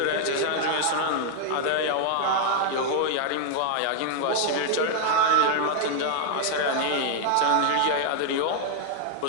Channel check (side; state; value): both; different; correlation -0.01